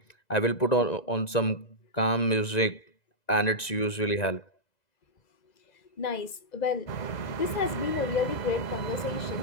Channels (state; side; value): late; right; 2.0 ms